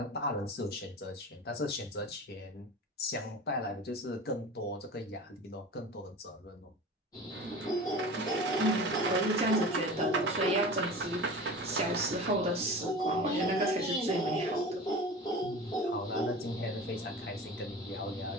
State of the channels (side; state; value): both; normal; correlation 0.35